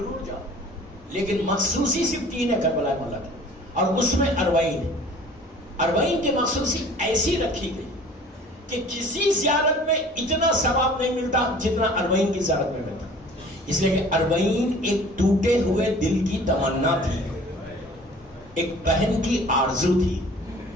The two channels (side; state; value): both; normal; correlation 0.48